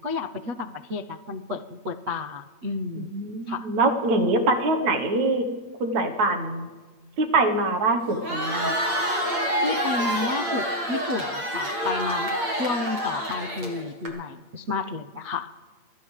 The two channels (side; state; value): left; late; 8.7 ms